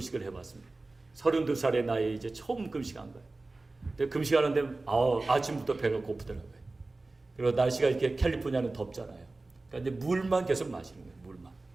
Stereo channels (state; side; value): quieter; left; 3.2 dB